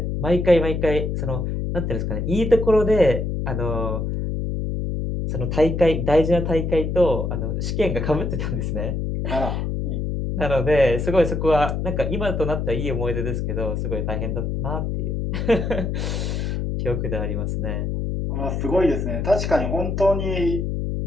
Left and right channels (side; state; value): left; noise; hum, 1 dB below the sound